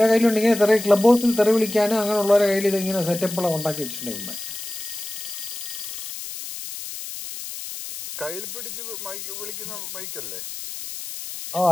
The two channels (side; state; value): left; noise; hiss, 9 dB below the sound